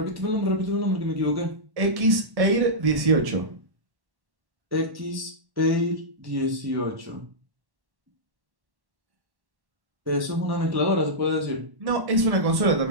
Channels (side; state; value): left; late; 1.1 ms